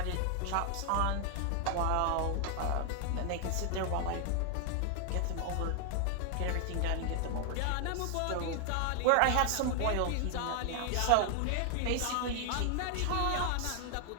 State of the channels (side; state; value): both; different; correlation 0.00